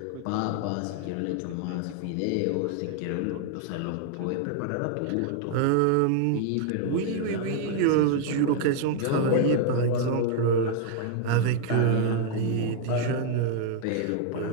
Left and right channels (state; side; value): different; both; correlation 0.00